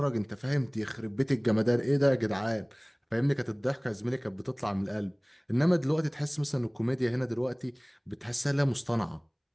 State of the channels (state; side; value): identical; both; correlation 1.00